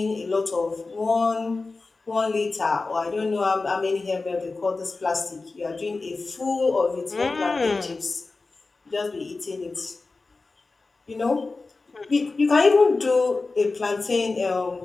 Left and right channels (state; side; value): quieter; right; 3.7 dB